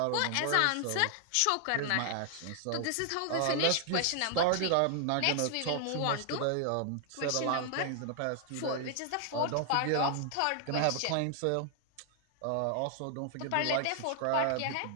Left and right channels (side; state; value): both; different; correlation 0.00